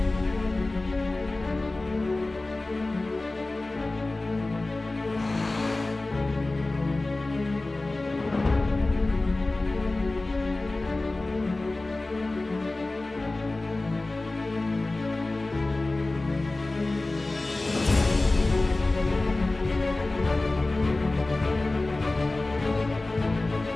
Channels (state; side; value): quieter; right; 3.0 dB